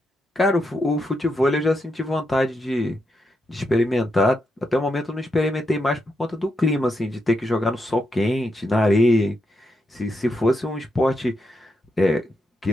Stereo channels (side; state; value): both; normal; correlation 0.83